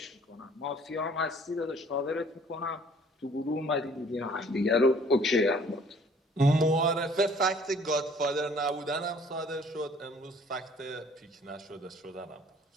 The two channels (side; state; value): both; normal; correlation 0.56